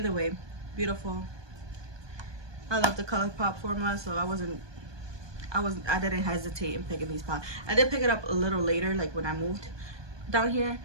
way, beautiful. I love the Colourpop formula, so I didn't hesitate in picking these palettes. I did pick it up a little later, like when I moved down here.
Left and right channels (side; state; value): left; late; 1.2 ms